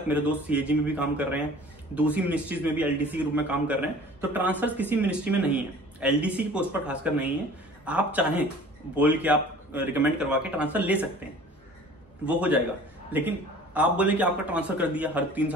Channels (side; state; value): both; normal; correlation 0.46